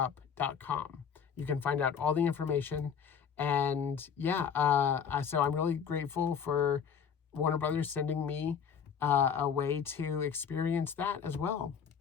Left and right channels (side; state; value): right; quieter; 7.2 dB